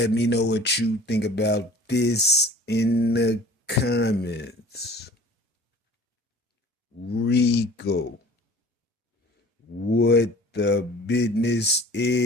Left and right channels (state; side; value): normal; both; correlation 0.46